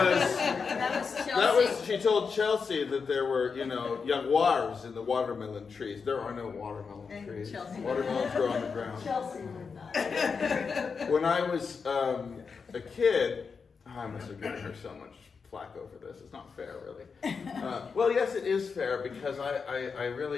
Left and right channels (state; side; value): quieter; right; 5.4 dB